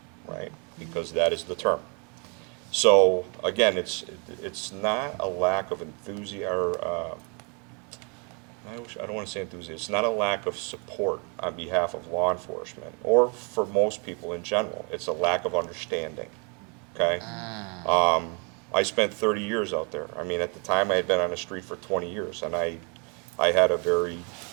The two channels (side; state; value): left; quieter; 35.1 dB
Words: right? Because that is the term. So again, it's not a lack of enthusiasm, or I don't want to say enthusiasm. It's not a lack of support on behalf of law enforcement, or for most people in general. It's a lack of understanding. Okay. I spent 30 years out there. I mean, at the time, I had been on the street for 20 years, and I had a very,